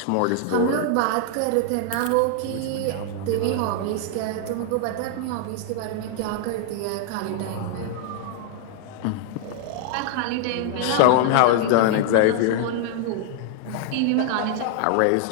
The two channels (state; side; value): different; both; correlation 0.00